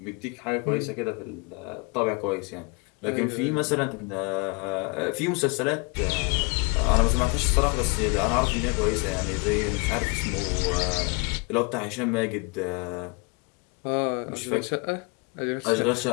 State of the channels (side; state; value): right; quieter; 31.0 dB